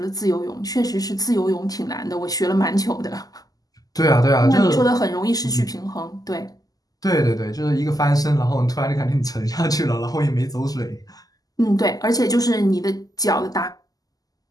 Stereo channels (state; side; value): late; right; 0.18 ms